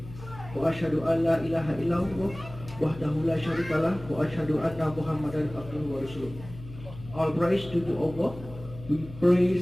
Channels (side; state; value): left; noise; hum, 15 dB below the sound